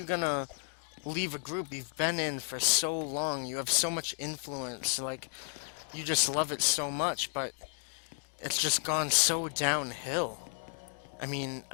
gonna leave a group you've been in for so long? You have so much influence, like, you just love it so much, but it's just gone so downhill. I mean,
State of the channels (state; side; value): silent; right; digital silence